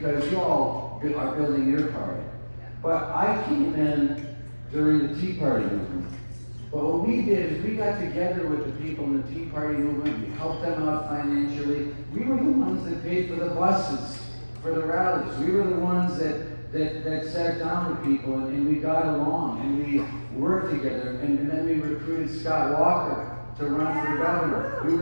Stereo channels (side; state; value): both; inverted; correlation -1.00